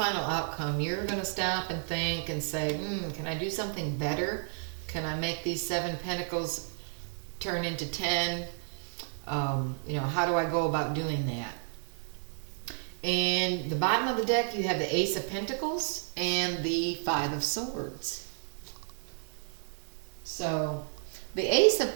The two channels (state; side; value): silent; left; digital silence